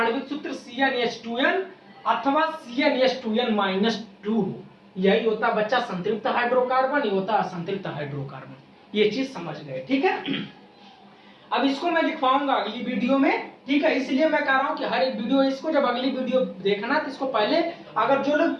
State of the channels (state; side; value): identical; both; correlation 1.00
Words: सूत्र CnH2n अथवा CnH2n-2 यही होता बच्चा संतृप्त हाइड्रोकार्बन, ये होता असंतृप्त हाइड्रोकार्बन। ये चीज समझ गए, ठीक है। अब इसको मैं लिखवाऊंगा अगली वीडियो में, ठीक है। इसलिए मैं कह रहा हूं कि हर एक वीडियो, इसको जब अगली वीडियो देखना तो इसको पहले, अगर जो लोग